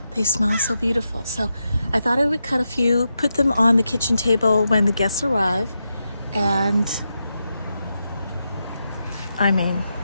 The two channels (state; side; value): inverted; both; correlation -0.87